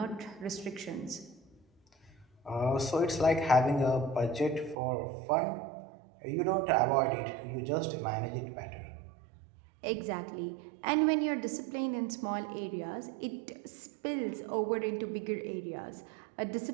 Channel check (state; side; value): drops out; left; at 4.8 s